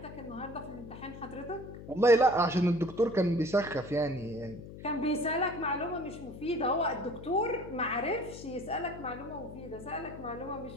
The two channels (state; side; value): noise; left; hum, 13 dB below the sound